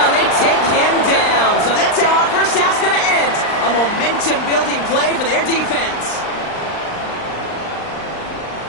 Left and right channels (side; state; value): right; late; 39 ms